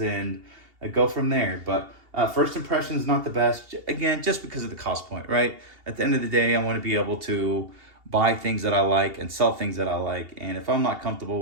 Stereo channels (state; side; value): late; left; 2.8 ms